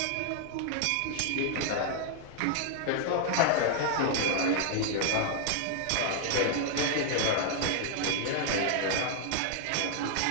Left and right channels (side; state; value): both; different; correlation 0.00